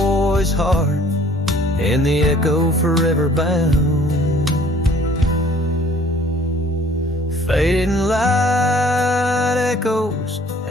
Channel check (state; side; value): normal; both; correlation 0.56